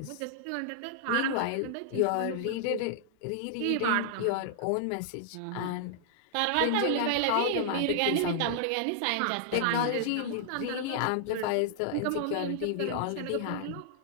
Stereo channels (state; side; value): different; both; correlation -0.01